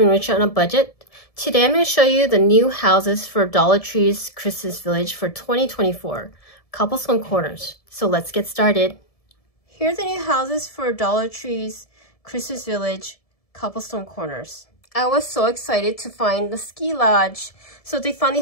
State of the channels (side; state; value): right; late; 1.7 ms